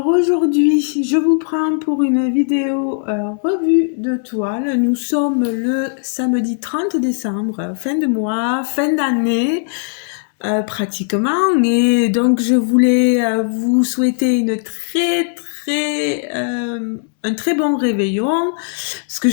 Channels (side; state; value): right; silent; 68 dB below the other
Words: aujourd'hui, je vous prends pour une vidéo revue de toile. Nous sommes le samedi 30 décembre, fin de mois, fin d'année pratiquement. Et donc je voulais vous souhaiter un très bon réveillon. Parce que